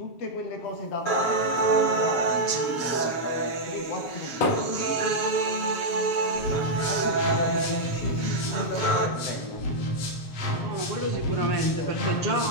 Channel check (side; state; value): right; late; 7.4 ms